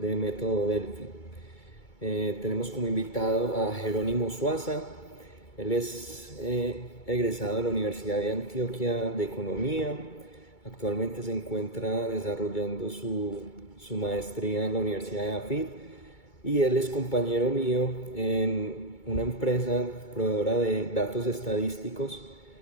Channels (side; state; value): right; late; 2.2 ms